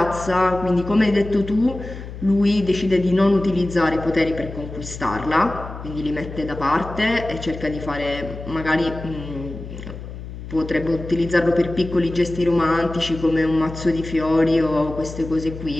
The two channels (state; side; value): noise; left; hum, 11 dB below the sound